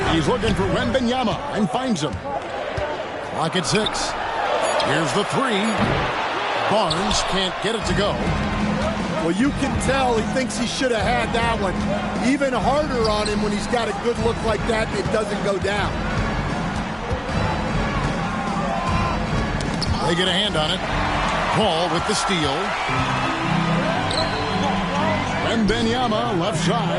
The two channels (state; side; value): identical; both; correlation 1.00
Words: He's looking for Wembanyama and finds him. Clock at 6. Here's the 3. Barnes can't get it to go. Well, you can tell he thinks he should have had that one. Even harder on him when he's got a good look like that and it doesn't go down. They get a hand on it. Paul with the steal. Wembanyama left